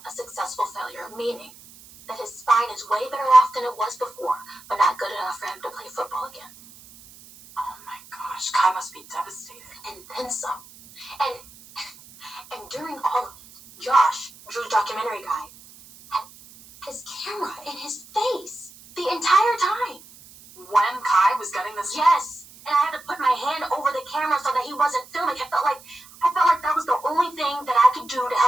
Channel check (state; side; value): noise; right; hiss, 21 dB below the sound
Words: a successful failure, meaning that his spine is way better off than it was before, but not good enough for him to play football again. Oh my gosh, Kai must be devastated. And then some. And during all of it, Josh, Drew's documentary guy, had his camera in his face the entire time. When Kai was getting this? Yes. And I had to put my hand over the camera so that he wasn't filming. I felt like that was the only thing that I could do to